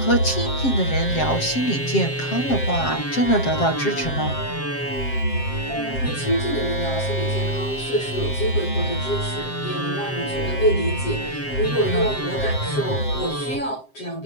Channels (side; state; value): right; late; 7.6 ms